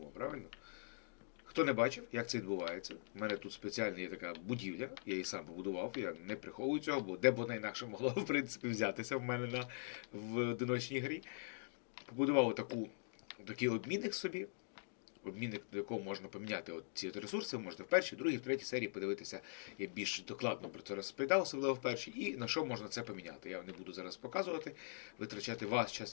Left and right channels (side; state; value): right; silent; digital silence